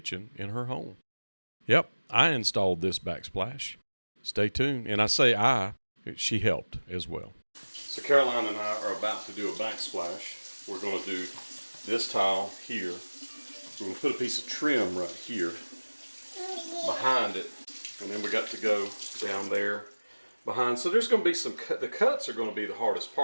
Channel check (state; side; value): inverted; both; correlation -1.00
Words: in her home. Yep, I installed this backsplash. Stay tuned. And I say she helped as well. So Caroline and I are about to do a backsplash. We're going to do this tile here. We're going to put a piece of trim right here behind it. And then we got to go down there behind. So there's going to be some the cuts are going to be the hardest